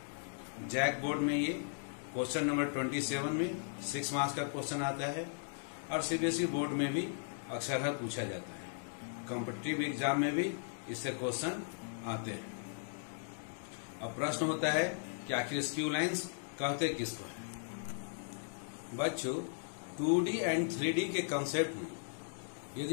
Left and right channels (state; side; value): silent; right; digital silence